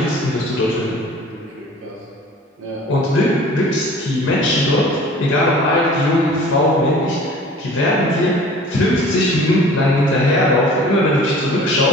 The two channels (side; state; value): both; normal; correlation 0.46